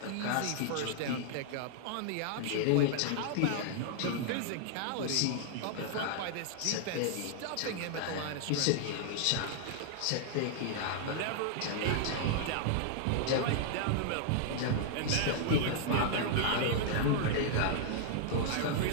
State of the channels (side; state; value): both; different; correlation -0.01